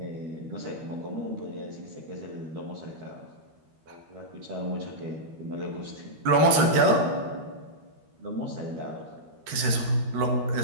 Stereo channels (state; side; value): late; left; 13 ms